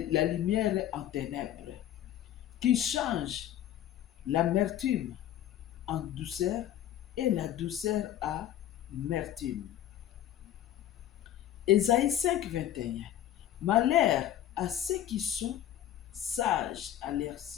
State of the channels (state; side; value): quieter; right; 11.7 dB